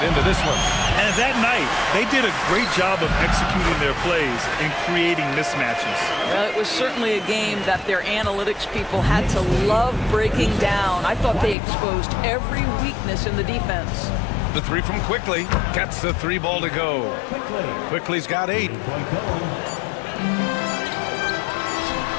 into this one. And that night, they did a great job of executing their plays and creating mismatches. Well, it was certainly a game that their analytics people had to love breaking down. I thought they exposed every weakness in the defense. The 3 from Quickly. Gets the 3 ball to go. Quickly's got 8.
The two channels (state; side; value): drops out; right; at 11.6 s